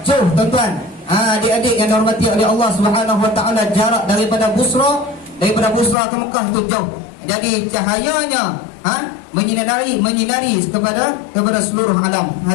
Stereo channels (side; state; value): right; drops out; at 6.0 s